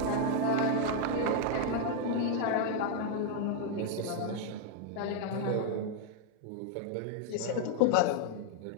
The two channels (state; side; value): different; both; correlation 0.00